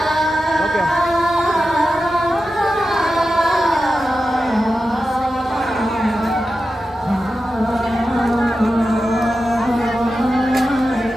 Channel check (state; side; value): normal; both; correlation 0.92